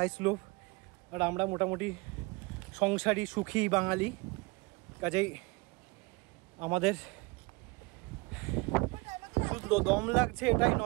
স্লোপ, আর আমরা মোটামুটি সংসারী সুখী বাঙালি, কাজেই আমাদের শুধু দম লাগছে এটাই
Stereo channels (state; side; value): quieter; left; 25.6 dB